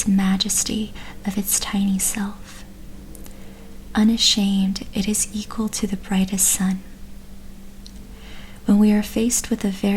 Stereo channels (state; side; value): identical; both; correlation 1.00